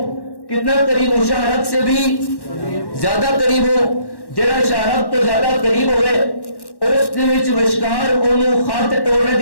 کتنا قریب ہوں؟ شہرت سے بھی زیادہ قریب ہوں. جڑا شہرت تو زیادہ قریب ہوئے اس دے وچ وشکار اونوں خط توڑنے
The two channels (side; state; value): right; late; 1.1 ms